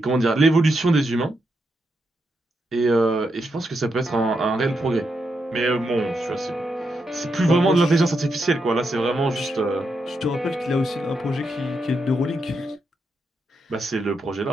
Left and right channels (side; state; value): both; normal; correlation 0.83